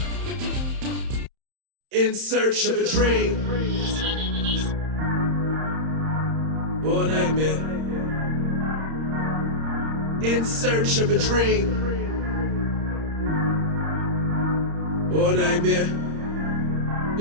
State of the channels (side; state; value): left; late; 31 ms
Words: In search of a dream or a nightmare. In search of a dream or a nightmare.